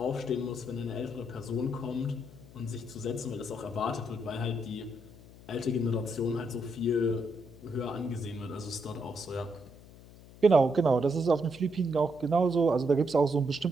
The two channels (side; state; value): left; noise; hum, 20 dB below the sound